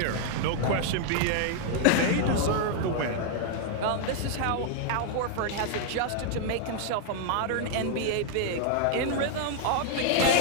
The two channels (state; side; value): different; both; correlation 0.00